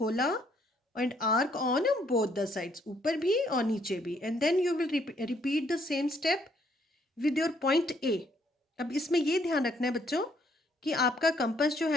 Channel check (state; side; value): normal; both; correlation 0.68